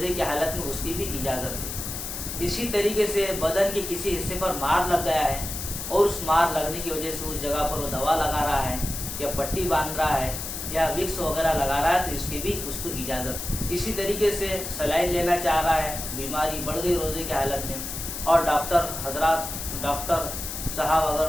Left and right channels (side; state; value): left; noise; hiss, 6 dB below the sound